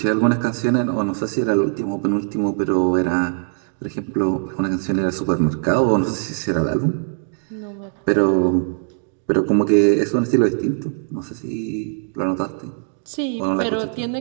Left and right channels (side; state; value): left; silent; 62 dB below the other